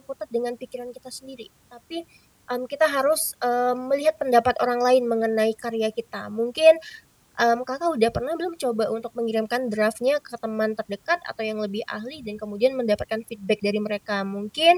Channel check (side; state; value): both; identical; correlation 1.00